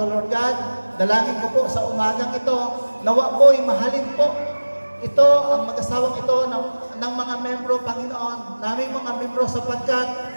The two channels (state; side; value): inverted; both; correlation -1.00